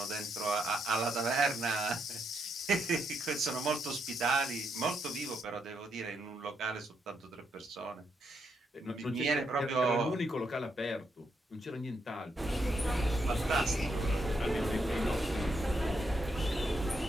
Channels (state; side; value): normal; both; correlation 0.78